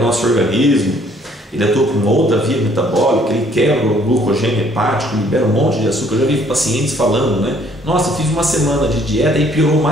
nosso organismo, ele atua por uma outra via metabólica, ele quebra o glucogênio hepático, libera um monte de açúcar. Eu já vi pacientes falando, né? Nossa, fiz uma semana de dieta e piorou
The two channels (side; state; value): both; normal; correlation 0.62